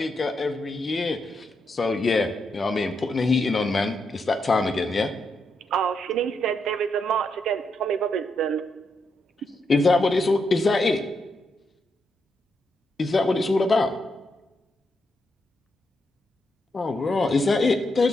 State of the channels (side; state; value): both; normal; correlation 0.81